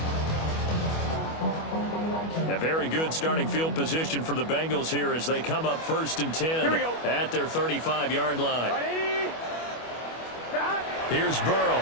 A very good starting field position for the Bengals here as they come up 1st and 10 at their 35-yard line. Here's Burrow.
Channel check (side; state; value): right; late; 25 ms